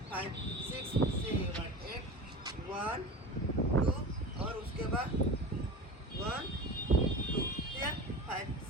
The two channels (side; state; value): both; normal; correlation 0.32